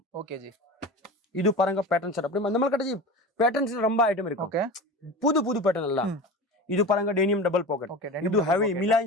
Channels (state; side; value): normal; both; correlation 0.31